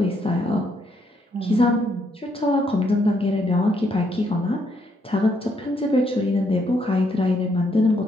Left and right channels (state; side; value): normal; both; correlation 0.73